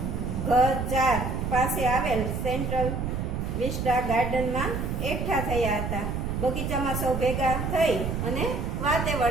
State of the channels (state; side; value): noise; right; rumble, 2 dB below the sound